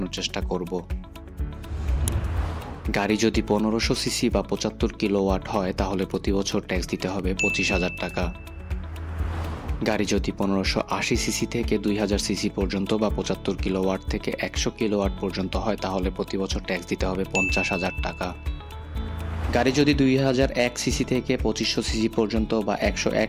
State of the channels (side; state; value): both; identical; correlation 1.00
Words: চেষ্টা করব। গাড়ি যদি 1500 সিসি বা 75 কিলোওয়াট হয় তাহলে প্রতি বছর ট্যাক্স দিতে হবে 25,000 টাকা। গাড়ি যদি 1580 সিসি থেকে 2000 সিসি পর্যন্ত বা 75 কিলোওয়াট থেকে 100 কিলোওয়াট পর্যন্ত হয় তাহলে প্রতি বছর ট্যাক্স দিতে হবে 50,000 টাকা। গাড়ি যদি 2001 সিসি থেকে 2500 সিসি পর্যন্ত বা